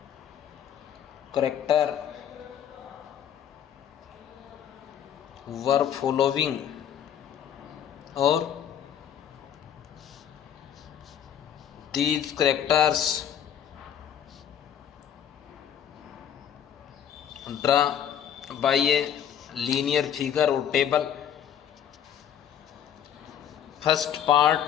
character were following, or these characters draw by a linear figure or table. First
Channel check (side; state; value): right; quieter; 9.4 dB